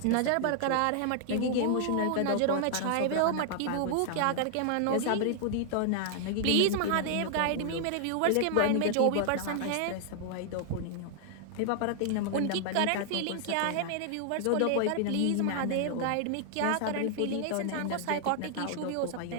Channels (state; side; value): different; both; correlation 0.00